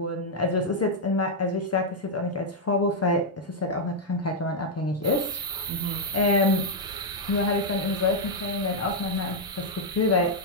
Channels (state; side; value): normal; both; correlation -0.03